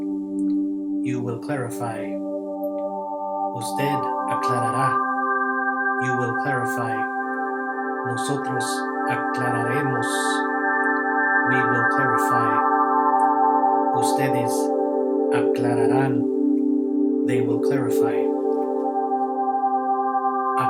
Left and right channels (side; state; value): both; identical; correlation 1.00